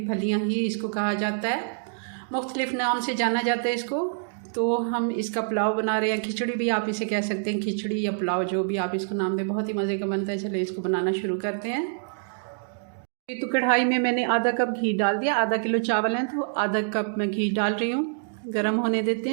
फलियाँ ही इसको कहा जाता है, मुख्तलिफ नाम से जाना जाता है इसको। तो हम इसका पुलाव बना रहे हैं, खिचड़ी भी आप इसे कह सकते हैं, खिचड़ी या पुलाव जो भी आप इसको नाम दें, बहुत ही मज़े का बनता है। चलिए इसको बनाना शुरू करते हैं। तो कढ़ाई में मैंने आधा कप घी डाल दिया। आधा किलो चावल हैं तो आधा कप मैं घी डाल रही हूँ। गरम होने देते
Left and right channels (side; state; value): left; silent; digital silence